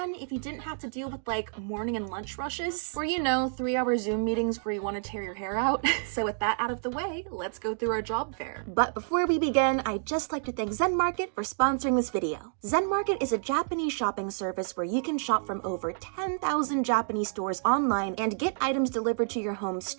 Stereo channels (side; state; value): left; silent; digital silence